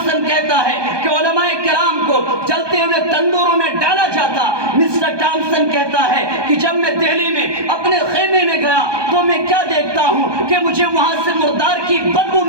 کہتا ہے کہ علماء کرام کو جلتے ہوئے تندوروں میں ڈالا جاتا۔ مسٹر ٹامسن کہتا ہے کہ جب میں دہلی میں اپنے خیمے میں گیا تو میں کیا دیکھتا ہوں کہ مجھے وہاں سے مردار کی بدبو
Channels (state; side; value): late; left; 1.2 ms